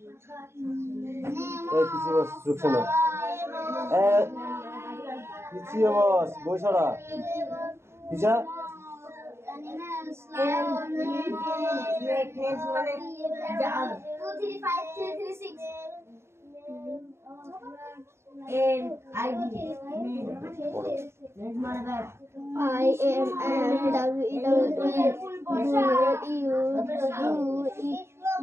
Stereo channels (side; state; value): left; late; 0.12 ms